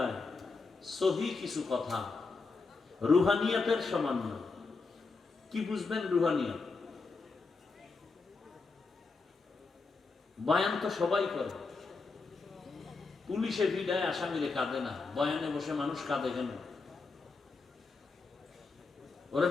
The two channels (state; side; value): quieter; right; 4.2 dB